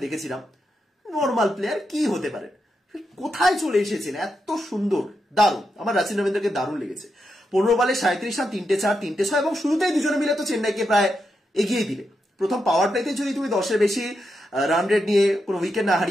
দেখেছিলাম, নর্মাল প্লেয়ার কি হতে পারে, কোথায় চলে এসেছেন এত সুন্দর, দারুণ। আমার রাচিন রবীন্দ্রকে দারুণ লেগেছে। 15 বলে 37 রান, 3টে 4, 3টে 6, এবং শুরুতেই দুজনে মিলে তো চেন্নাইকে প্রায় এগিয়ে দিলে। প্রথম পাওয়ার প্লেতে যদি তুমি 10-এর বেশি রান রেট নিয়ে কোনো উইকেট না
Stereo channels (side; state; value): both; normal; correlation 0.85